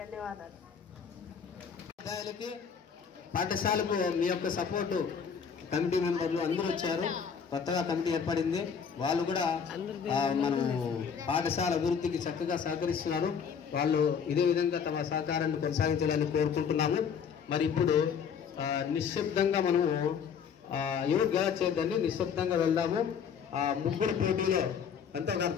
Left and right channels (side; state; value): right; quieter; 6.9 dB